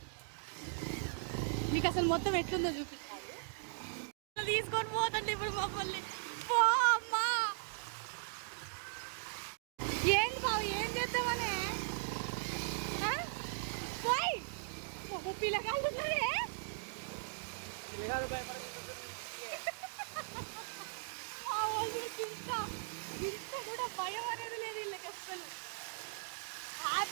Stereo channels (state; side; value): silent; left; digital silence